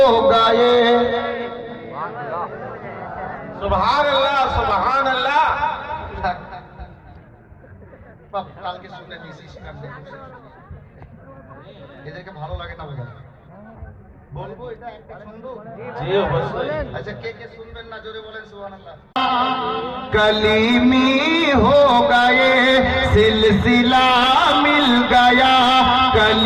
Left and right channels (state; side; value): identical; both; correlation 1.00